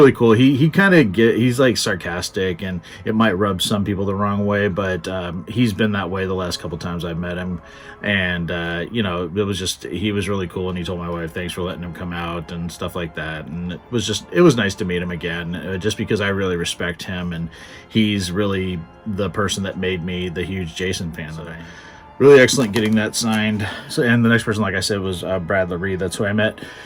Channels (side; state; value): both; identical; correlation 1.00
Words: cool. He kind of he's like sarcastic, and it might rub some people the wrong way, but he's been that way the last couple times I've met him. And you know, he was really cool, and he told my wife thanks for letting him come out and stuff like that. And it was nice to meet him again, just because I really respect him, and he's really the person that made me the huge Jason fan that I am. Really excellent getting that signed. So, and the next person, like I said, was Brad Laree. That's who I met.